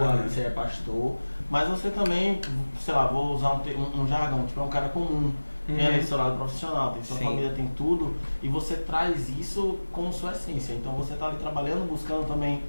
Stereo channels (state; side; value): inverted; both; correlation -1.00